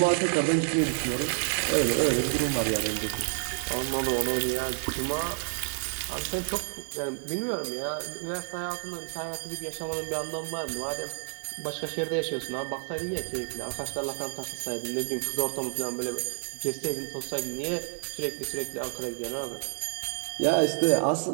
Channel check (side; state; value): left; silent; digital silence